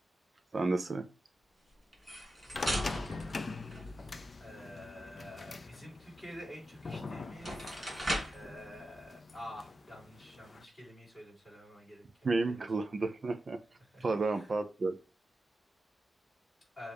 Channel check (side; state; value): both; normal; correlation 0.91